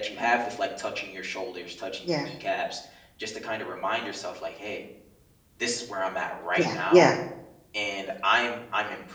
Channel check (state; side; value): identical; both; correlation 1.00